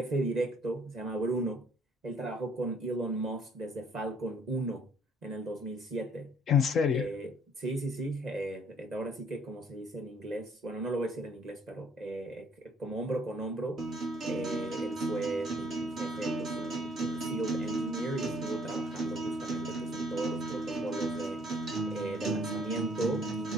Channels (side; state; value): both; normal; correlation 0.61